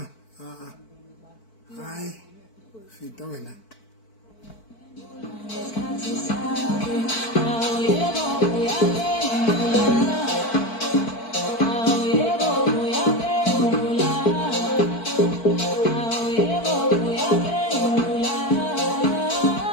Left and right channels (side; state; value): right; late; 4.5 ms